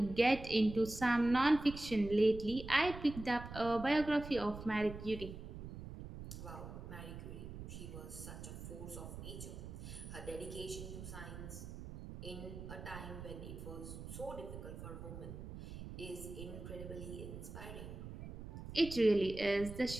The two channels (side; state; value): right; noise; rumble, 10 dB below the sound